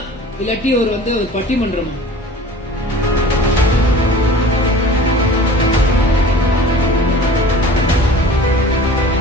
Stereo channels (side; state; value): both; normal; correlation 0.42